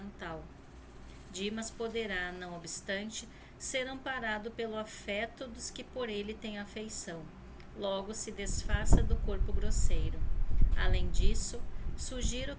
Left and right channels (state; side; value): identical; both; correlation 1.00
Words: Dimas poderá, não obstante, ser amparado pelo afeto dos que por ele têm afeição. Logo se desfaça do corpo grosseiro. Além disso, sugiro